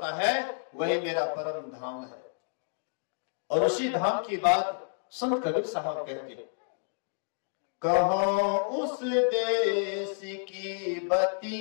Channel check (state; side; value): silent; right; digital silence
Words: है, वही मेरा परम धाम है। और उसी धाम की बात संत कबीर साहब कहते हैं, कहो उस देश की